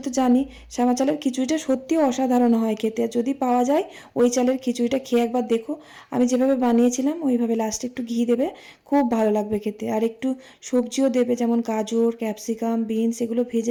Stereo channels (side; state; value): both; identical; correlation 1.00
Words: তো জানি শ্যামা চালের খিচুড়িটা সত্যিও অসাধারণ হয় খেতে। যদি পাওয়া যায় ওই চালের খিচুড়িটা খেয়ে একবার দেখো, আমি যেভাবে বানিয়েছিলাম ওইভাবে লাস্টে একটু ঘি দেবে, খুব ভালো লাগবে খেতে। আর একটু সবজিও দেবে, যেমন গাজর, ক্যাপসিকাম, বিনস, এগুলো